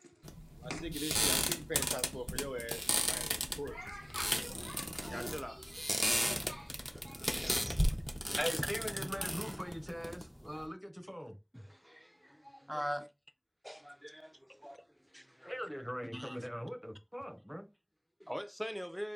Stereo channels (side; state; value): both; identical; correlation 1.00